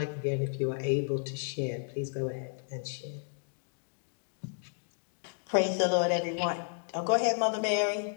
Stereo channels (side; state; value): right; silent; digital silence